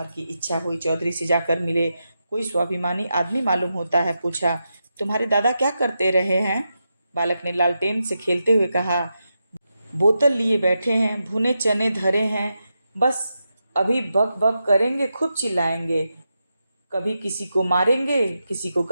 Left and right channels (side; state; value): both; inverted; correlation -0.88